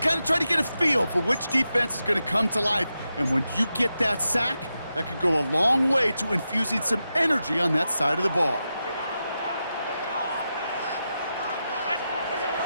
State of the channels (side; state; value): both; inverted; correlation -0.89